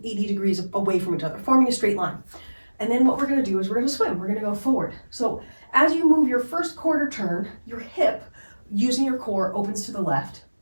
degrees away from each other, forming a straight line. And then what we're going to do is we're going to swim. We're going to go forward. So as you move your first quarter turn, your hip, using your core, opens to the left.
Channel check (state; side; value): inverted; both; correlation -1.00